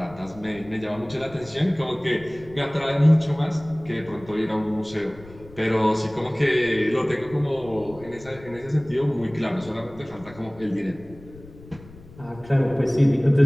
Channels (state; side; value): noise; left; rumble, 20 dB below the sound